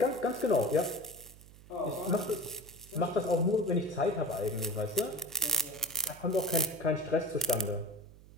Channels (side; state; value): right; noise; hum, 21 dB below the sound